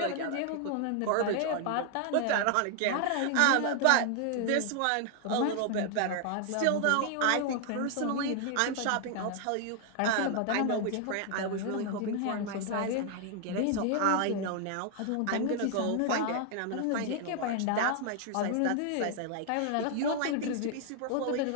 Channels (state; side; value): different; both; correlation 0.00